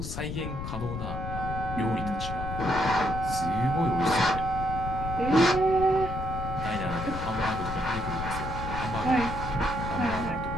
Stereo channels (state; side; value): noise; left; rumble, 5 dB below the sound